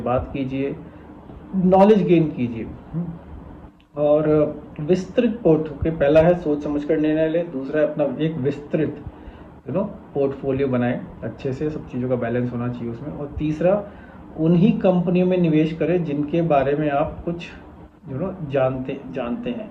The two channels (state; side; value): identical; both; correlation 1.00